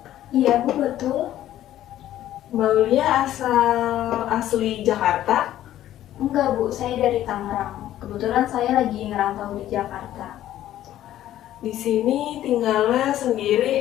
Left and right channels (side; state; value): right; quieter; 12.8 dB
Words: Iya Bu, betul. Mbak Aulia asli Jakarta? Enggak Bu, saya dari Tangerang. Kebetulan saya lagi ngerantau di Jakarta. Di sini tinggalnya